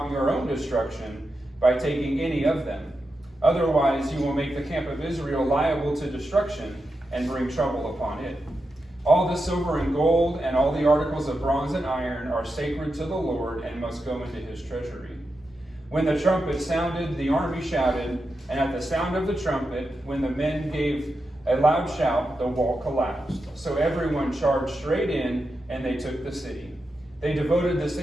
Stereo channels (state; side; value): normal; both; correlation 0.88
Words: your own destruction by taking any of them. Otherwise you will make the camp of Israel liable to destruction and bring trouble upon it. All the silver and gold and all the articles of bronze and iron are sacred to the Lord and must go into his treasury." When the trumpet sounded, the army shouted, and at the sound of the trumpet, when the men gave a loud shout, the wall collapsed. So everyone charged straight in, and they took the city. They devoted the